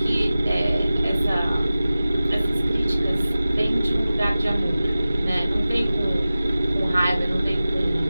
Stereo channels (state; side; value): inverted; both; correlation -0.96